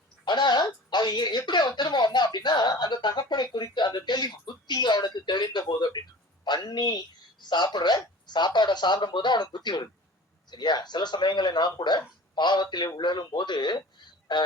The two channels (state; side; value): normal; both; correlation 0.41